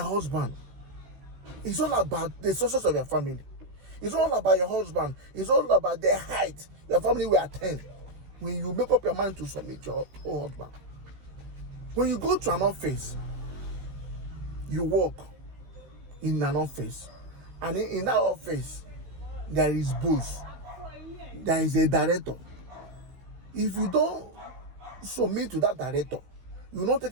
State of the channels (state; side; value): late; left; 16 ms